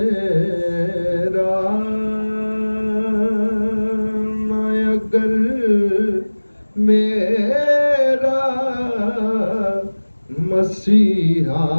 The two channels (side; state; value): both; inverted; correlation -1.00